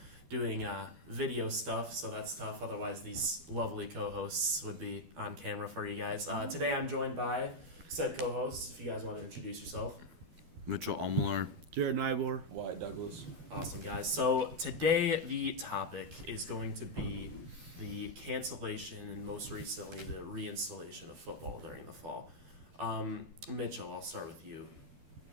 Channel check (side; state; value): left; late; 12 ms